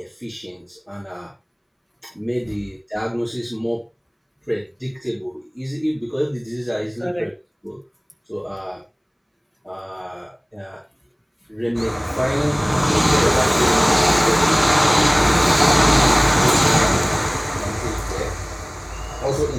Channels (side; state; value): both; identical; correlation 1.00